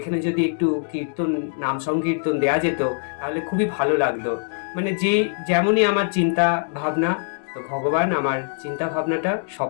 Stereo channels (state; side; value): silent; right; 64 dB below the other